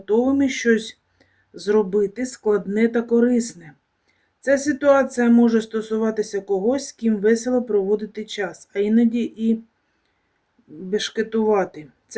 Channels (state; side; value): identical; both; correlation 1.00